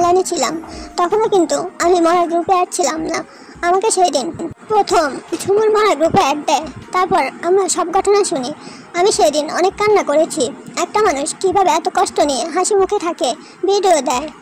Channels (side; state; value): both; identical; correlation 1.00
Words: ছিলাম। তখনও কিন্তু আমি মরা গ্রুপে অ্যাড ছিলাম না। আমাকে সেই দিন প্রথম ঝুমুর মরা গ্রুপে অ্যাড দেয়। তারপর আমরা সব ঘটনা শুনি। আমি সেদিন অনেক কান্না করেছি। একটা মানুষ কীভাবে এত কষ্ট নিয়ে হাসি মুখে থাকে, ভিডিও দেয়